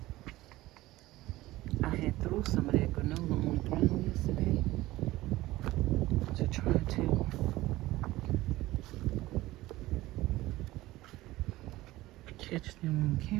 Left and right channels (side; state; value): left; quieter; 17.5 dB